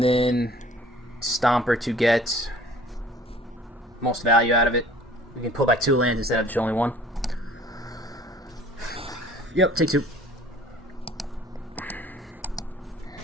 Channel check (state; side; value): normal; both; correlation 0.52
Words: then Stomper to get most value out of it. We can pull back 2 lands instead of just only 1. Yep, take 2.